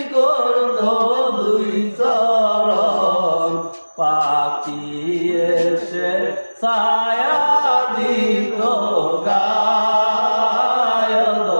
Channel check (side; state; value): both; inverted; correlation -1.00